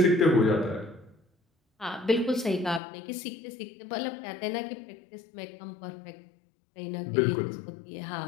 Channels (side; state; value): right; drops out; at 2.8 s